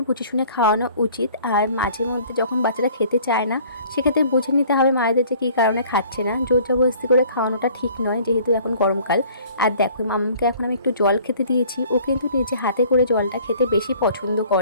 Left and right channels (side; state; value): both; inverted; correlation -0.53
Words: বুঝে শুনে খাওয়ানো উচিত, আর মাঝে মধ্যে যখন বাচ্চারা খেতে চায় না সেক্ষেত্রে বুঝে নিতে হবে মায়েদের যে কী কারণে খাচ্ছে না। জোর জবরদস্তি করে খাওয়ানোটা ঠিক নয় যেহেতু এখন গরমকাল। আর দেখো মামামকে এখন আমি একটু জল খেতে দিয়েছি, ও কিন্তু নিজে হাতে করে জলটা খেতে বেশি পছন্দ